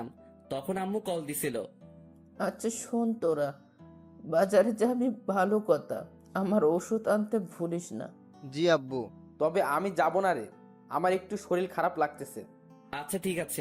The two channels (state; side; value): identical; both; correlation 1.00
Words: তখন আম্মু কল দিছিল। আচ্ছা শোন, তোরা বাজারে যাবি ভালো কথা, আমার ওষুধ আনতে ভুলিস না। জি আব্বু। তবে আমি যাব না রে, আমার একটু শরীর খারাপ লাগতেছে। আচ্ছা ঠিক